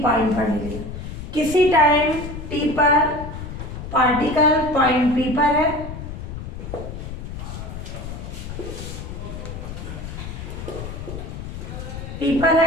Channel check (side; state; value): left; noise; rumble, 9 dB below the sound